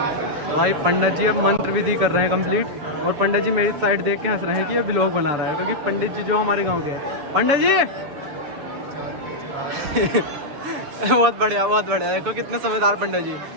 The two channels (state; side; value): late; left; 6.9 ms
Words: भाई पंडित जी अब मंत्र विधि कर रहे हैं कंप्लीट और पंडित जी मेरी साइड देख के हंस रहे हैं कि ये व्लॉग बना रहा है, क्योंकि पंडित जी जो हमारे गांव के हैं। पंडित जी बहुत बढ़िया देखो कितने समझदार पंडित जी,